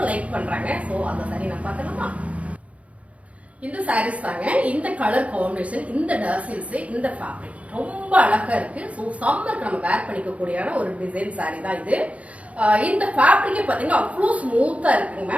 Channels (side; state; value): left; late; 0.065 ms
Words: லைக் பண்றாங்க. சோ அந்த சாரி நான் பார்க்கலாமா? இந்த சாரீஸ் தாங்க. இந்த கலர் காம்பினேஷன், இந்த டாசில்ஸ், இந்த ஃபேப்ரிக் ரொம்ப அழகா இருக்கு. ஸோ சம்மருக்கு நம்ம வேர் பண்ணிக்கக்கூடிய ஒரு டிசைன் சாரி தான் இது. இந்த ஃபேப்ரிக்கே பாத்தீங்கன்னா அவ்வளோ ஸ்மூத்தா இருக்குங்க